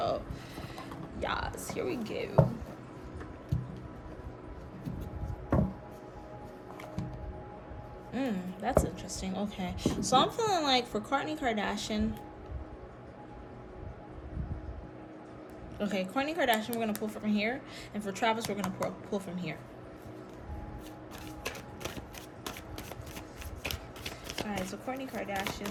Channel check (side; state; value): both; identical; correlation 1.00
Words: yes, here we go. That's interesting. Okay, so I'm feeling like for Kourtney Kardashian, Kourtney Kardashian, we're gonna pull from here, and for Travis, we're gonna pull from here. All right, so Kourtney